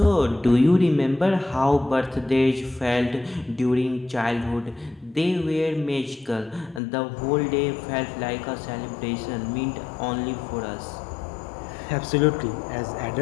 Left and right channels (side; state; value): right; drops out; at 6.8 s